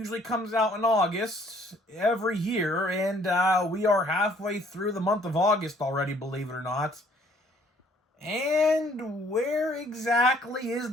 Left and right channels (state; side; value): normal; both; correlation 0.61